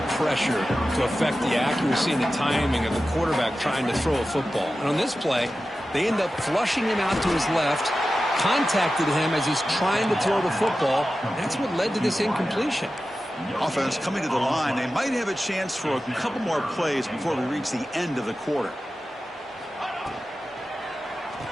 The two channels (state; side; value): normal; both; correlation 0.94